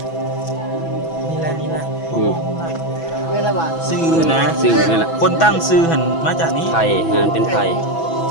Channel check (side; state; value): right; late; 6.1 ms